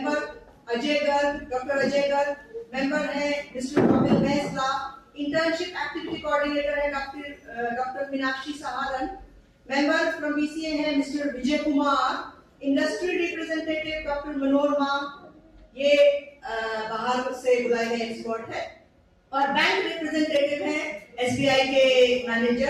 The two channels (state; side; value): identical; both; correlation 1.00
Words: Ajay Garg, doctor Ajay Garg. Member है mister Kapil Mehsala. Internship activity coordinator है doctor Meenakshi Saharan. Member from BCA है mister Vijay Kumar. Industry representative doctor Manorama, ये बाहर से बुलाए गए एक्सपर्ट है। और बैंक रिप्रेजेंटेटिव है एसबीआई के